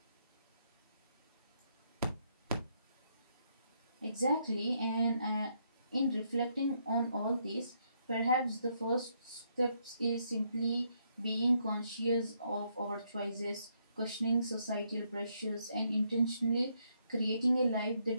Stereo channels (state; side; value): inverted; both; correlation -0.75